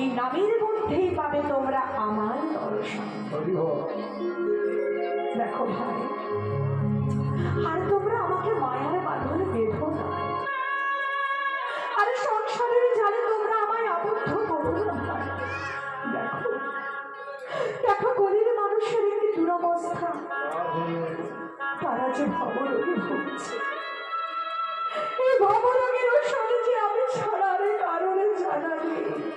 নামের মধ্যেই পাবে তোমরা আমার দর্শন। দেখো ভাই, আর তোমরা আমাকে মায়ার বাঁধনে বেঁধো না, আর সংসারের জালে তোমরা আমায় আবদ্ধ করো না। দেখো দেখো গরিব মানুষের একটি দুরবস্থা, তারা যে ভবরোগে ভুগছে। এই ভবরোগের ওষুধে যে আমি ছাড়ার কারণে জানা নেই।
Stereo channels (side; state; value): both; identical; correlation 1.00